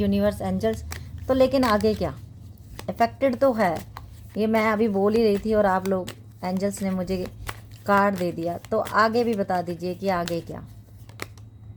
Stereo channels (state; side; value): identical; both; correlation 1.00